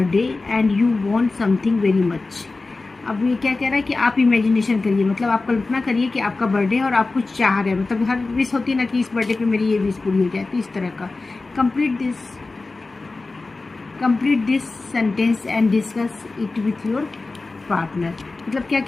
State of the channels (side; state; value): right; quieter; 3.5 dB